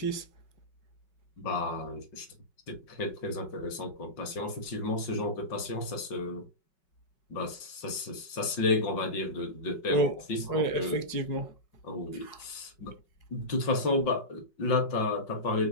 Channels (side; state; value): right; late; 5.4 ms